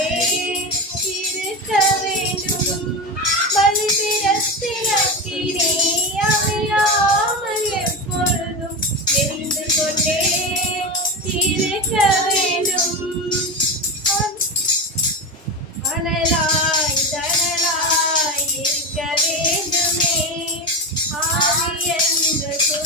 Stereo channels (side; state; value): both; normal; correlation 0.20